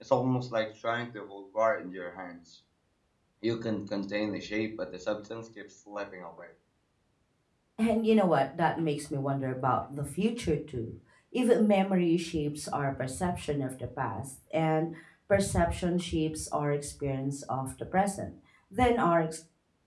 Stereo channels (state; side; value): identical; both; correlation 1.00